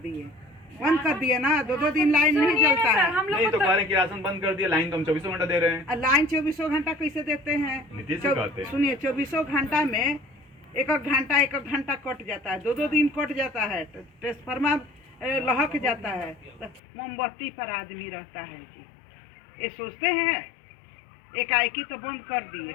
ना। 2 दिन लाइन नहीं जलता है। नहीं तो कह रहे हैं कि राशन बंद कर दिया, लाइन तो हम 24 घंटा दे रहे हैं। लाइन 24 घंटा कैसे देते हैं? नीतीश जी कहते हैं। सुनिए, 24 घंटा में एक घंटा कट जाता है, 2 दिन कट जाता है, ट्रांसफार्मर लहक जाता है, तो मोमबत्ती पर आदमी रहता है जी। ये सोचते हैं एकाएकी तो बंद कर दिए,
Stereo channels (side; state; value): right; drops out; at 16.8 s